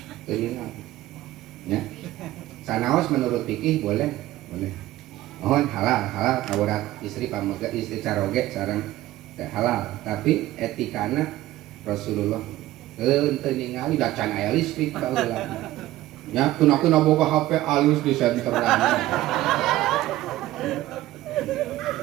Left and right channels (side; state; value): left; quieter; 15.7 dB